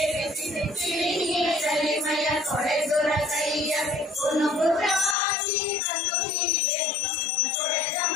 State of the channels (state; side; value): drops out; right; at 5.2 s